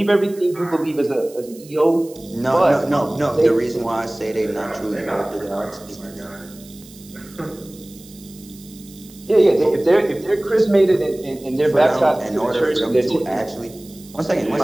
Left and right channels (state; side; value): noise; right; hiss, 22 dB below the sound